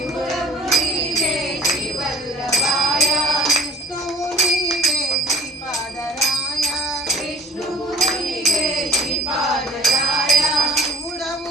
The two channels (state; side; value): normal; both; correlation 0.45